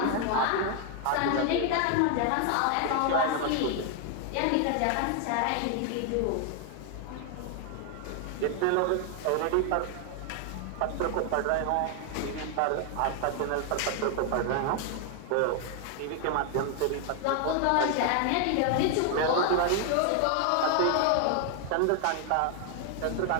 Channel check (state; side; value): different; both; correlation 0.00